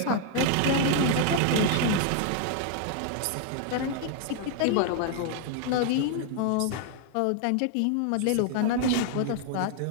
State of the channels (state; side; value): different; both; correlation 0.00